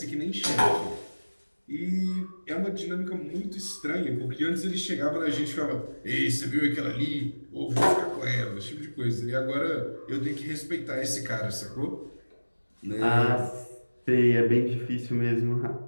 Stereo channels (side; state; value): both; inverted; correlation -1.00